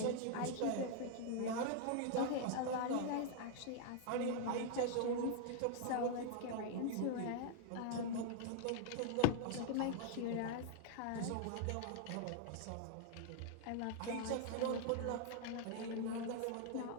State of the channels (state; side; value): different; both; correlation 0.00